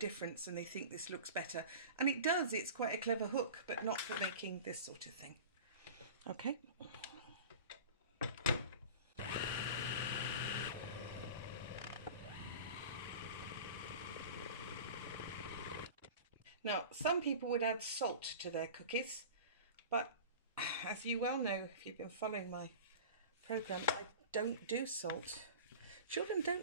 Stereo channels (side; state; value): both; inverted; correlation -0.36